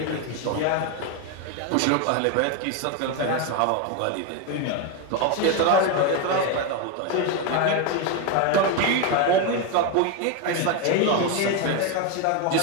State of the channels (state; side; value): different; both; correlation 0.02